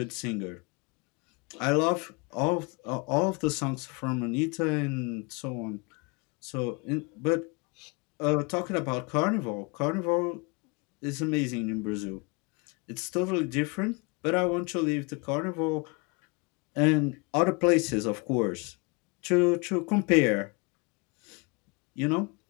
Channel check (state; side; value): quieter; right; 30.1 dB